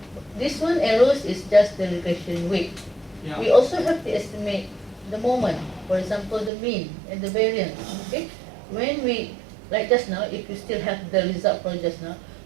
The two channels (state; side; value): drops out; left; at 6.5 s